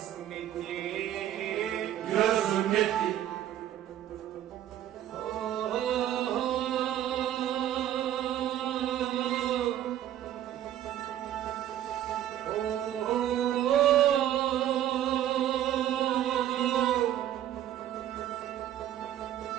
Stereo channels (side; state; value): left; quieter; 11.8 dB